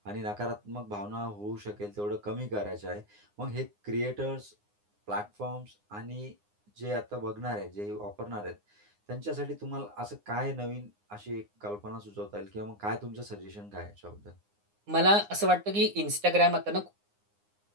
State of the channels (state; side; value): late; left; 9.7 ms